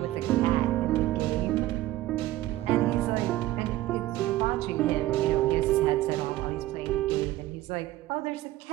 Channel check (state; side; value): quieter; left; 15.7 dB